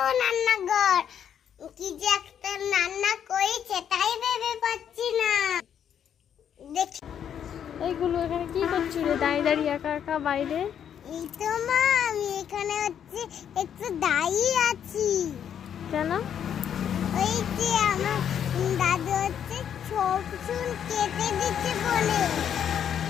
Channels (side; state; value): right; quieter; 8.9 dB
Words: রান্নাঘর। কি যে একটা রান্না করেছে তাই ভেবে পাচ্ছি না। দেখি এইগুলো এখানে কি করছিস রে দাঁড়িয়ে দাঁড়িয়ে একা একা বাইরে? এই তো মা, আমি এখানে একটু দাঁড়িয়ে আছি। কেন? ওই যে আমার দাদু সব চুল কেটে দিচ্ছে বলে।